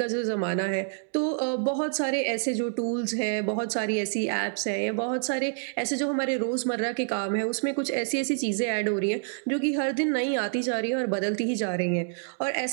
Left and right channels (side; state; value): left; silent; digital silence